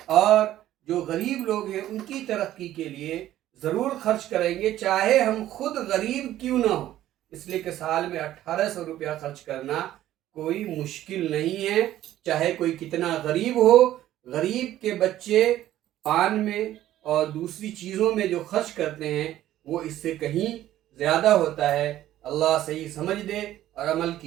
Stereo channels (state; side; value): quieter; left; 13.4 dB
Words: اور جو غریب لوگ ہیں ان کی ترقی کے لیے ضرور خرچ کریں گے، چاہے ہم خود غریب کیوں نہ ہو، اس لیے کہ سال میں 1800 روپیہ خرچ کرنا کوئی مشکل نہیں ہے، چاہے کوئی کتنا غریب ہو۔ غریب کے بچے پان میں اور دوسری چیزوں میں جو خرچ کرتے ہیں وہ اس سے کہیں زیادہ ہوتا ہے۔ اللہ صحیح سمجھ دے اور عمل